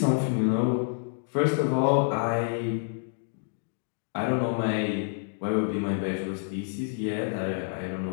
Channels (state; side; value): silent; right; digital silence